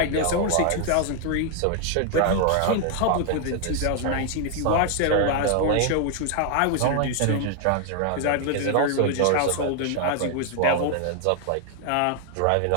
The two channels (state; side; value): different; both; correlation 0.00